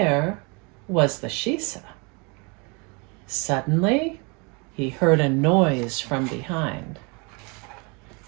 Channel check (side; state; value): left; quieter; 31.1 dB